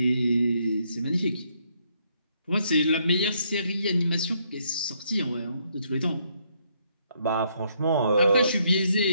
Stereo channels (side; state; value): both; inverted; correlation -0.72